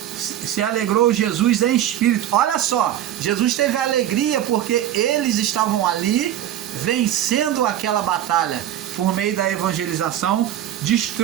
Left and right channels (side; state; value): left; quieter; 11.9 dB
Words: se alegrou Jesus em espírito. Olha só, Jesus teve alegria porque eles estavam ali vencendo aquela batalha por meio da evangelização,